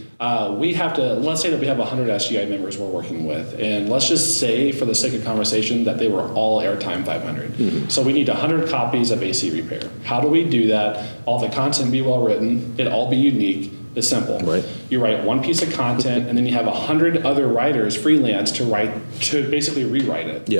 we have to, let's say that we have 100 SGI members we're working with, and let's just say for the sake of conversation that they were all airtime 500. So we need 100 copies of AC repair. How do we do that? All the content be well written, it all be unique. It's simple. Right. You write one piece of content and then you have 100 other writers freelance to basically rewrite it.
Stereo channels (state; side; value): inverted; both; correlation -1.00